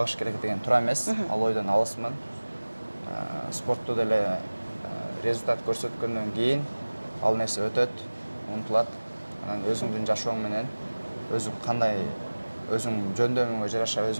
керек деген туура эмес. Ал ойдон алысмын. Спортту деле результат көрсөткөндөн кийин ал нерсе өтөт, унутулат. Анан өзүңдүн жашооң менен өзүң кандай өзүң жөндөмүңө жараша,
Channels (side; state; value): both; inverted; correlation -1.00